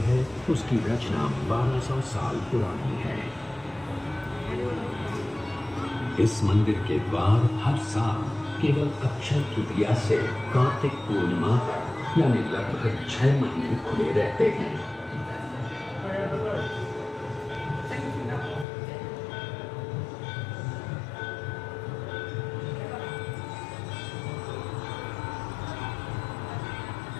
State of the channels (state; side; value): drops out; right; at 18.7 s